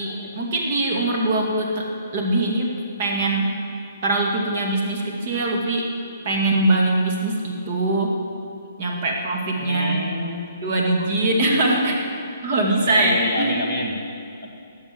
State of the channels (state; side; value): inverted; both; correlation -0.59